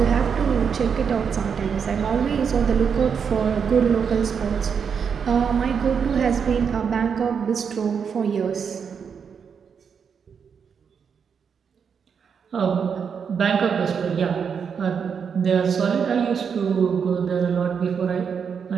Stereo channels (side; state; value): left; quieter; 6.7 dB